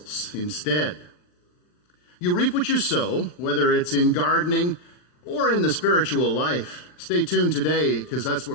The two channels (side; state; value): right; late; 39 ms